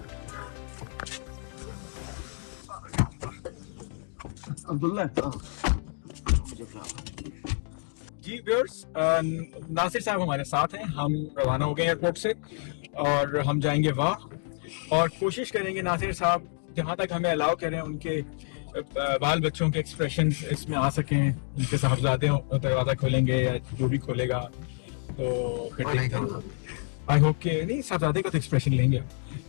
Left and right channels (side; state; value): right; silent; 59 dB below the other